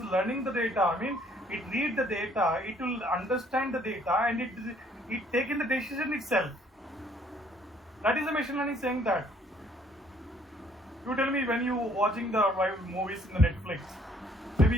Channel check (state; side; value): normal; both; correlation 0.62